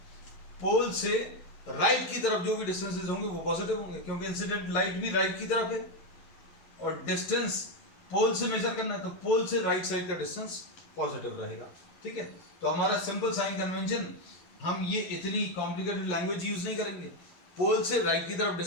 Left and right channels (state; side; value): late; right; 11 ms